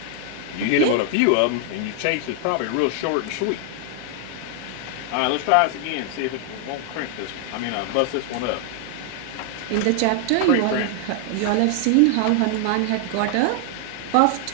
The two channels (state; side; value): different; both; correlation 0.00